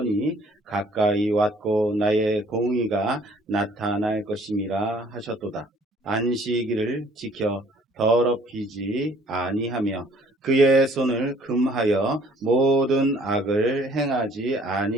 가까이 왔고 나의 공의가 나타날 것임이라 하셨도다. 안식일을 지켜 더럽히지 아니하며 그의 손을 금하여 모든 악을 행하지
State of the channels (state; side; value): normal; both; correlation 0.57